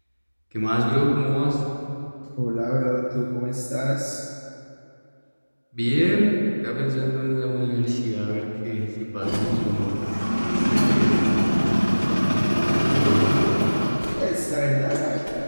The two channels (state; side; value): inverted; both; correlation -1.00